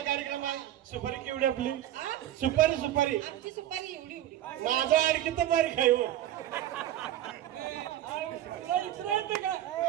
कार्यक्रम आहे. सुपारी केवढी आपली? हा? सुपारी आमची सुपारी एवढी एवढी माझा आणखी तर बारीक आहे हो. तुला विचारायचं का?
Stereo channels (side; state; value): left; quieter; 12.7 dB